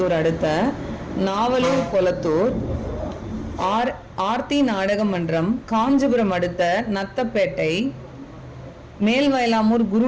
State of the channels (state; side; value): identical; both; correlation 1.00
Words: அடுத்த நாவலூர் கொளத்தூர். ஆர்த்தி நாடக மன்றம் காஞ்சிபுரம் அடுத்த நத்தப்பேட்டை. மேல்வயலாமூர்